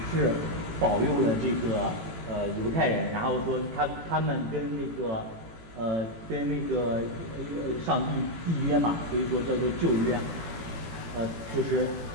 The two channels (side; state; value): left; late; 18 ms